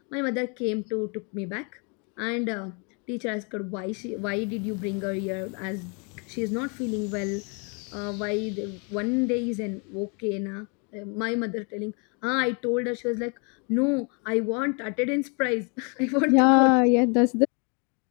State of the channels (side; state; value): right; quieter; 34.7 dB